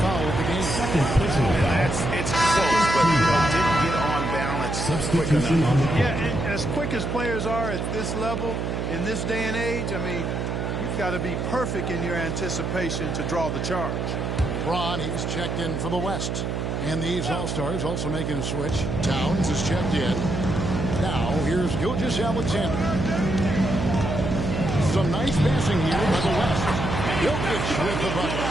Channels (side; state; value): right; noise; hum, 2 dB below the sound